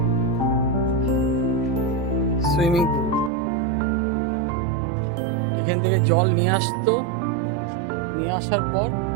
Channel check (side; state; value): left; drops out; at 3.3 s